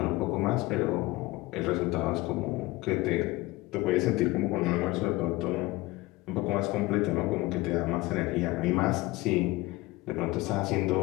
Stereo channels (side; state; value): right; quieter; 20.4 dB